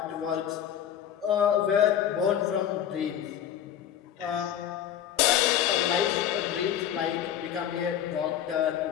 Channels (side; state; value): right; quieter; 9.9 dB